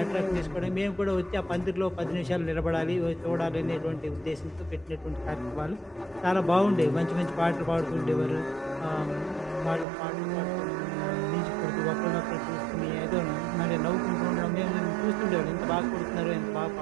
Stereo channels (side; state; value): left; drops out; at 9.9 s